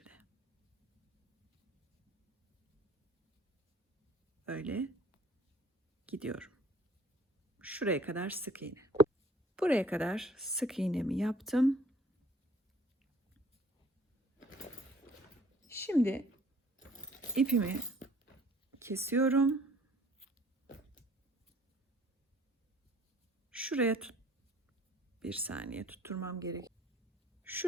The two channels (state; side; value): normal; both; correlation 0.55